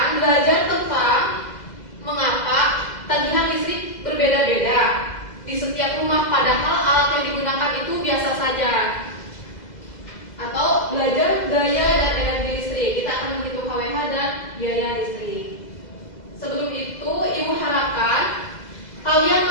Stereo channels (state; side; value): late; right; 2.0 ms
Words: belajar tentang mengapa tagihan listrik berbeda-beda di setiap rumah, padahal alat yang digunakan itu biasa saja. Atau belajar daya dan energi listrik. Kita akan menghitung KWH dan biaya listrik. Sebelum itu, Ibu harapkan kalian